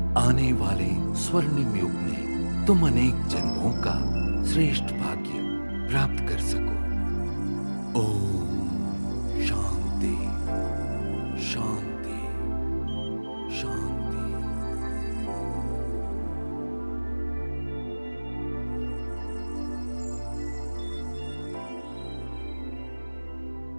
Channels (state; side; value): inverted; both; correlation -1.00